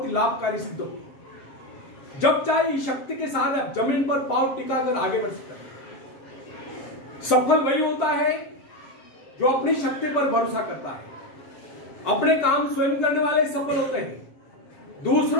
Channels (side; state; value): right; late; 7.5 ms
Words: ही लाभकारी सिद्ध होगी। जब चाहे इस शक्ति के साथ आप जमीन पर पांव टिकाकर आगे बढ़ सकते हैं। सफल वही होता है जो अपनी शक्ति पर भरोसा करता है। अपने काम स्वयं करने वाले सफल होते हैं।